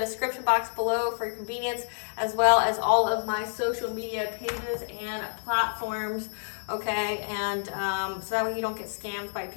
box below for your convenience, as well as all of my social media pages and platforms, okay? And so that way you don't get scammed by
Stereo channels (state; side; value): silent; right; digital silence